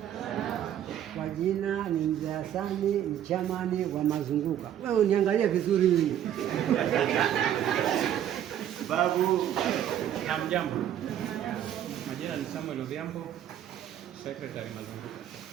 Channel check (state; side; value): quieter; left; 10.7 dB